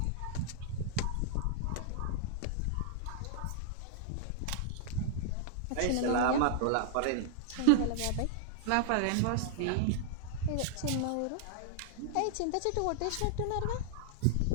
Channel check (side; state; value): both; different; correlation -0.01